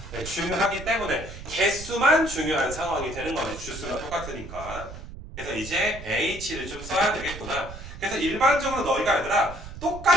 중요하기 때문에 개수만 중요한 상황이 되는 거네. 주스가 똑같으니까. 그래서 이제 H를 좀 써야 되겠구나. 그래서 일반적으로 너희가 얘들아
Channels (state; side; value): noise; right; rumble, 12 dB below the sound